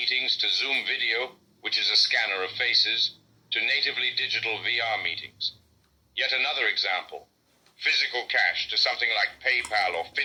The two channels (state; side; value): identical; both; correlation 1.00